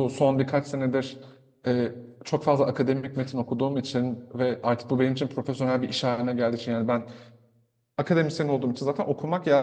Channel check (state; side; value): identical; both; correlation 1.00